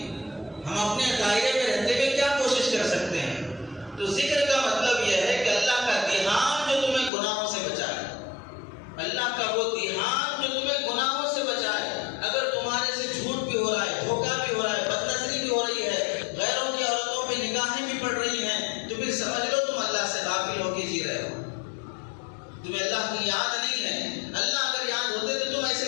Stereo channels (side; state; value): right; drops out; at 7.1 s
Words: ہم اپنے دائرے میں رہتے ہوئے کیا کوشش کر سکتے ہیں۔ تو ذکر کا مطلب یہ ہے کہ اللہ کا دھیان جو تمہیں گناہوں سے بچائے، اللہ کا وہ دھیان